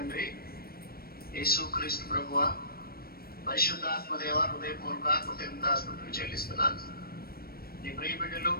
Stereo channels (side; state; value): right; late; 0.44 ms